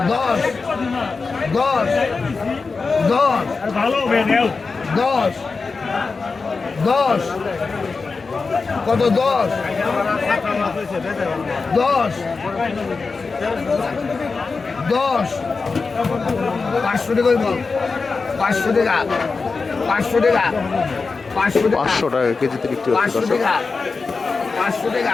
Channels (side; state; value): right; quieter; 4.4 dB